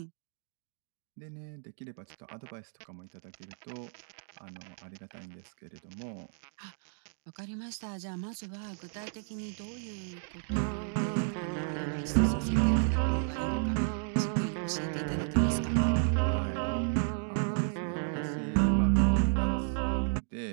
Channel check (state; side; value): silent; left; digital silence